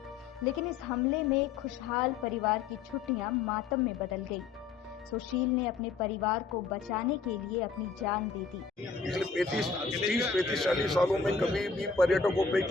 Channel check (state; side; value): quieter; right; 5.1 dB